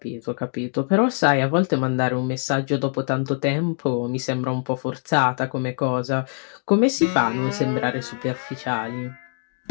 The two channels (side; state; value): right; silent; 57 dB below the other